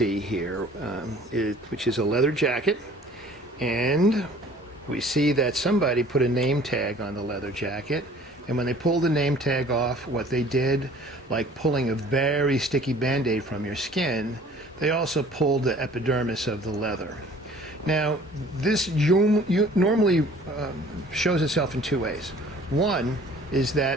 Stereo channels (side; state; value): both; normal; correlation 0.51